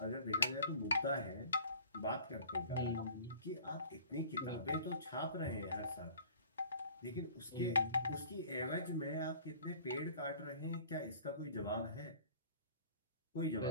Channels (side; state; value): both; inverted; correlation -0.48